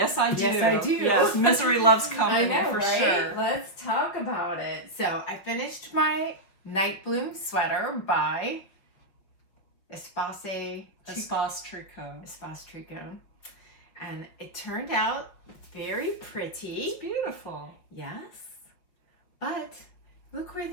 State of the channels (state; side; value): late; right; 5.4 ms